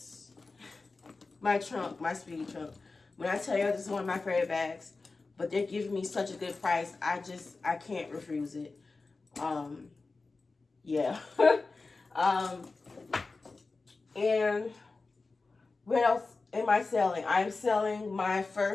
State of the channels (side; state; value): right; quieter; 3.8 dB